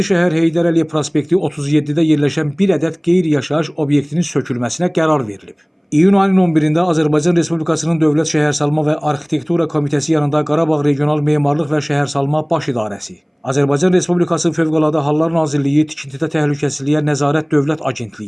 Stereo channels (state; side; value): identical; both; correlation 1.00